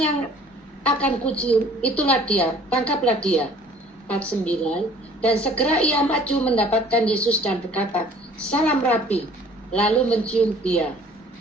akan kucium, itulah dia, tangkaplah dia. 49, dan segera ia maju mendapatkan Yesus dan berkata, salam Rabi, lalu mencium dia.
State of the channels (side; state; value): both; normal; correlation 0.53